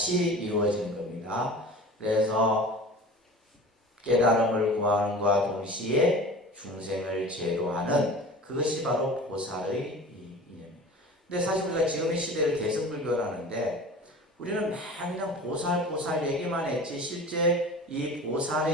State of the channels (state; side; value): normal; both; correlation 0.38